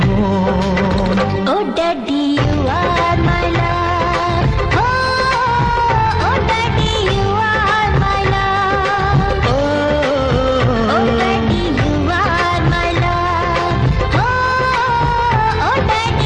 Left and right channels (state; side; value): identical; both; correlation 1.00